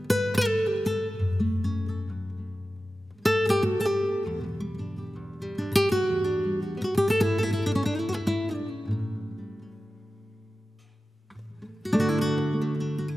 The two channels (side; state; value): both; normal; correlation 0.94